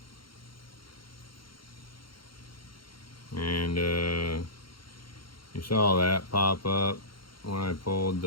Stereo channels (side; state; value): right; late; 0.73 ms